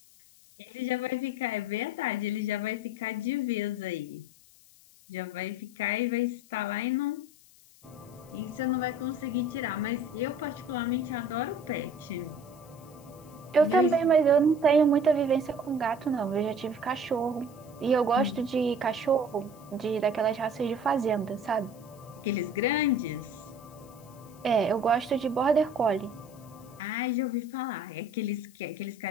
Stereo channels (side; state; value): left; noise; hiss, 26 dB below the sound